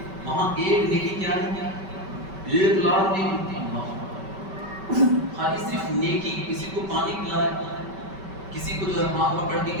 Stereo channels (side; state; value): left; late; 5.2 ms